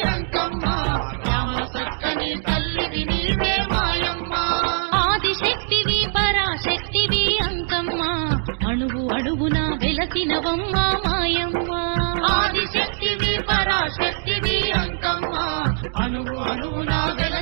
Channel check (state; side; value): silent; left; 64 dB below the other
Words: అంకమ్మ రామ సక్కని తల్లివి నీవే మాయమ్మ ఆదిశక్తివి పరాశక్తివి అంకమ్మ అణువు అడుగున వెలసినవమ్మ మాయమ్మ ఆదిశక్తివి పరాశక్తివి అంకమ్మ అణువు అడుగున